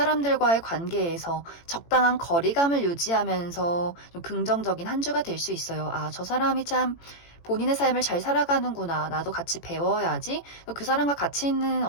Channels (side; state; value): right; late; 18 ms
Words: 관계에서 적당한 거리감을 유지하면서 좀 긍정적인 한 주가 될 수 있어요. 저 사람이 참 본인의 삶을 잘 살아가는구나. 나도 같이 배워야지. 그 사람과 같이 있는